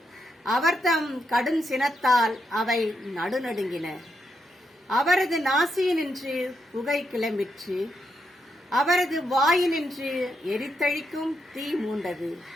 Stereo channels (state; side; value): normal; both; correlation 0.81